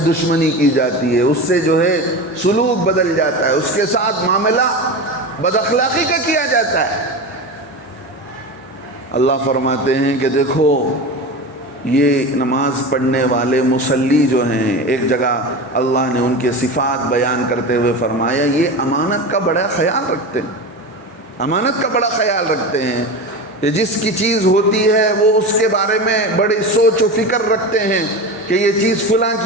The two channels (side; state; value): both; normal; correlation 0.26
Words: کی جاتی ہے، اس سے جو ہے سلوک بدل جاتا ہے، اس کے ساتھ معاملہ بد اخلاقی کا کیا جاتا ہے۔ اللہ فرماتے ہیں کہ دیکھو یہ نماز پڑھنے والے مصلی جو ہیں، ایک جگہ اللہ نے ان کے صفات بیان کرتے ہوئے فرمایا یہ امانت کا بڑا خیال رکھتے ہیں، امانت کا بڑا خیال رکھتے ہیں، کہ جس کی چیز ہوتی ہے وہ اس کے بارے میں بڑی سوچ و فکر رکھتے ہیں کہ یہ چیز فلاں